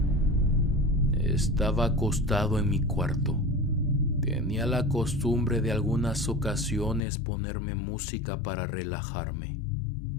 Estaba acostado en mi cuarto. Tenía la costumbre de algunas ocasiones ponerme música para relajarme.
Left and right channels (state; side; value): drops out; right; at 7.0 s